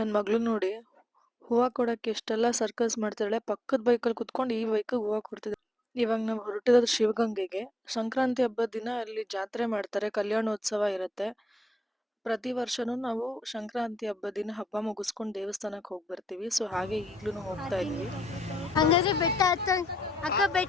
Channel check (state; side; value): normal; both; correlation 0.79